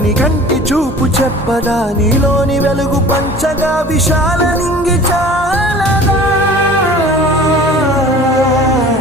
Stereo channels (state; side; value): normal; both; correlation 0.44